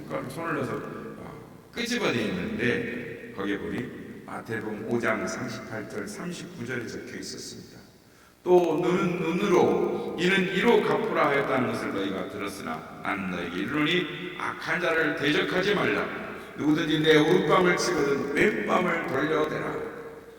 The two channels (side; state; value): both; identical; correlation 1.00